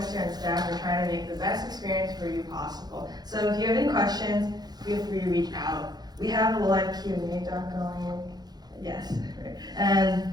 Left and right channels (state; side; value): late; left; 0.19 ms